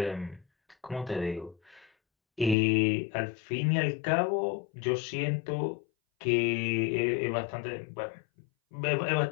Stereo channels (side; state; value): right; drops out; at 2.6 s